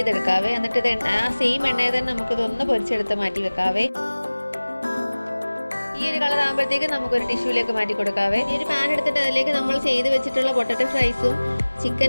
എന്നിട്ട് ഇത് ആ സെയിം എണ്ണയിൽ തന്നെ നമുക്കിതൊന്ന് പൊരിച്ചെടുത്ത് മാറ്റി വെക്കാവേ. ഈ ഒരു കളർ ആകുമ്പോഴത്തേക്ക് നമുക്കൊരു ടിഷ്യൂലേക്ക് മാറ്റി കൊടുക്കാവേ. ഈ ഒരു പാൻ എടുത്തിട്ട് അതിലേക്ക് നമ്മൾ ചെയ്ത് വെച്ചിട്ടുള്ള പൊട്ടറ്റോ ഫ്രൈസും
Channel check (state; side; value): inverted; both; correlation -1.00